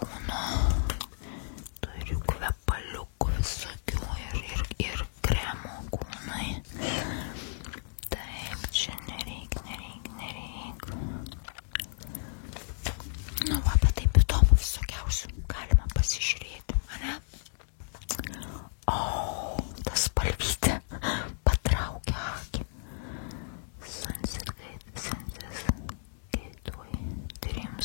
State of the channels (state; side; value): silent; right; digital silence